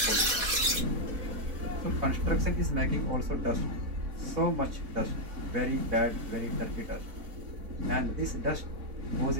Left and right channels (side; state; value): left; late; 4.2 ms